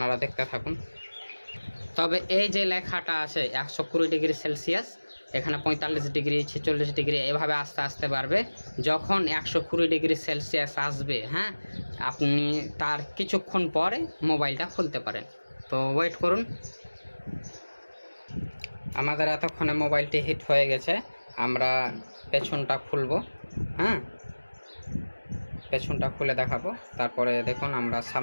দেখতে থাকুন তবে এই যে লেখাটা আছে 120 ডিগ্রি সেলসিয়াস এখানে 45 ডিগ্রি 46 ডিগ্রি এভাবে আস্তে আস্তে বাড়বে যখন 120 ডিগ্রি সেলসিয়াস আসবে হ্যাঁ আপনি তার কিছুক্ষণ পরে মোবাইলটা খুলতে পারেন তো ওয়েট করুন আমাদের এতক্ষণে মোবাইলটি হিট হয়ে গেছে আমরা পেছনটা খুলব হ্যাঁ পেছনটা খুলে দেখাবো তারপরে দেখুন আমরা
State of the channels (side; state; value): both; inverted; correlation -1.00